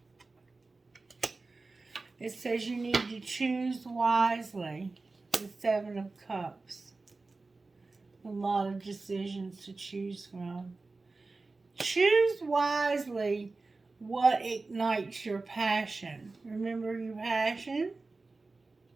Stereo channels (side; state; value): left; quieter; 3.6 dB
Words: It says you need to choose wisely. The Seven of Cups. A lot of decisions to choose from. Choose wisely what ignites your passion. Remember your passion?